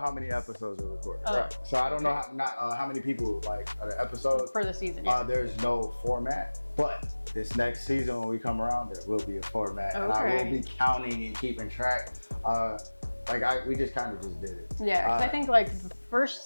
many episodes are recorded. Oh. Right. So I don't know how many people like are the episodes. For the season. There's no format, but this next season when we come around, there will be a format, and I will be counting and keeping track. We just kind of just did it. Yeah, I think like the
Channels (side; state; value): both; inverted; correlation -1.00